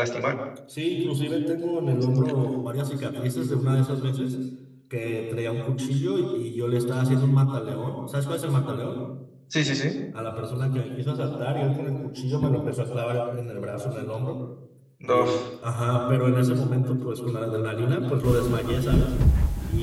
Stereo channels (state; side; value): identical; both; correlation 1.00